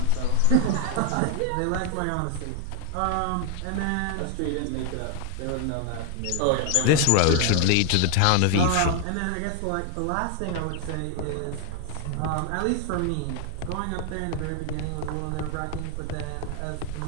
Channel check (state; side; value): different; both; correlation 0.01